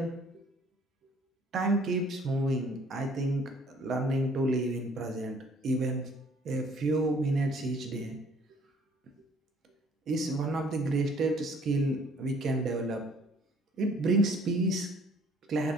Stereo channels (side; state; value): both; normal; correlation 0.58